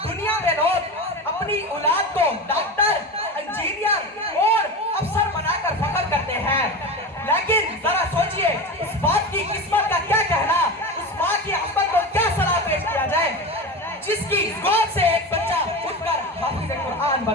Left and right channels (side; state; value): both; normal; correlation 0.25